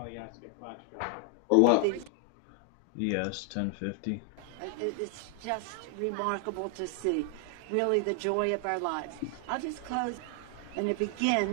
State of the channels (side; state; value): both; different; correlation 0.00